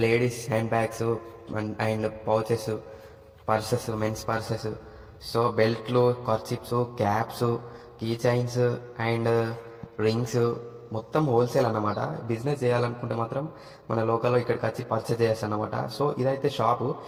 ladies hand bags and pouches, purses, men's purses, so బెల్ట్లు, kerchiefs, caps, key chains and rings మొత్తం హోల్సేల్ అన్నమాట. బిజినెస్ చేయాలనుకుంటే మాత్రం మన లోకల్లో ఇక్కడికి వచ్చి పర్చేజ్ చేయొచ్చు అన్నమాట. సో ఇదైతే షాపు.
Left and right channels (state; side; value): identical; both; correlation 1.00